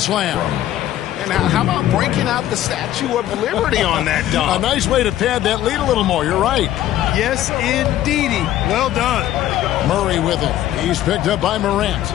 Now, how about breaking out the Statue of Liberty on that A dunk? nice way to pad that lead a little more. You're right. Yes, indeedy. Well done. Murray with it. He's picked up by Morant.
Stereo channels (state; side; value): quieter; right; 12.9 dB